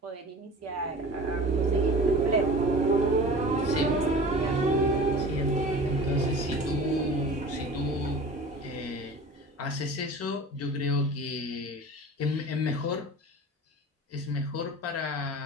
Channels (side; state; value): both; normal; correlation 0.39